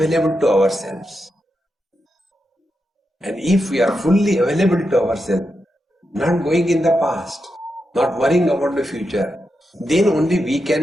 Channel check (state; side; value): normal; both; correlation 0.87